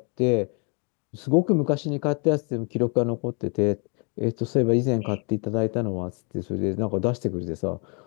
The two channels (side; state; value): right; quieter; 35.7 dB